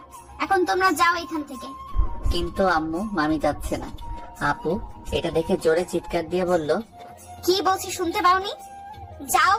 এখন তোমরা যাও এখান থেকে। কিন্তু আম্মু মামি যাচ্ছে না। আপু এটা দেখে জোরে চিৎকার দিয়ে বলল, কি বলছি শুনতে পাওনি? যাও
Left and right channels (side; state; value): both; identical; correlation 1.00